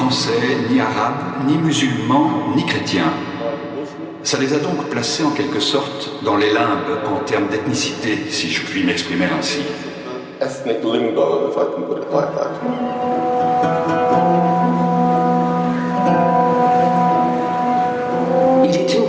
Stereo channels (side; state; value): both; identical; correlation 1.00